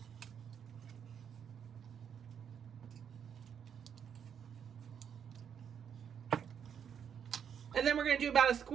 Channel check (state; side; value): quieter; left; 7.9 dB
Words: And then we're going to do about a